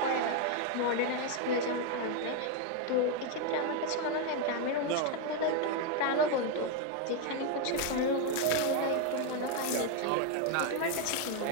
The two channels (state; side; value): different; both; correlation 0.01